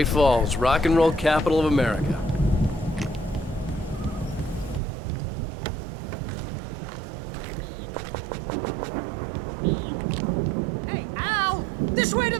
Falls, rock and roll capital of America. Hey, Al! This way to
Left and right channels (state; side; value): drops out; left; at 4.8 s